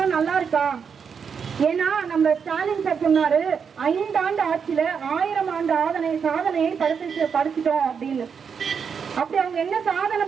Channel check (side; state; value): left; quieter; 6.5 dB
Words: நல்லா இருக்கா? ஏன்னா நம்ம ஸ்டாலின் சார் சொன்னாரு 5 ஆண்டு ஆட்சியில 1000 ஆண்டு சாதனையை படிச்சுட்டோம் அப்படின்னு. அப்படி அவங்க என்ன சாதனை